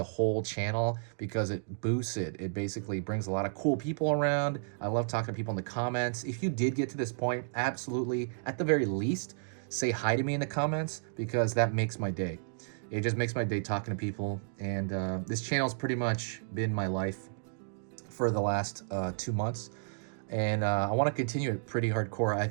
whole channel because it boosts it. It basically brings a lot of cool people around. I love talking to people in the comments. If you did get to this point, absolutely, at the very least, say hi to me in the comments because that makes my day. It just makes my day talking to people. And this channel's pretty much been my life for the last 2 months. And I want to continue it pretty hardcore. I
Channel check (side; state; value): left; silent; digital silence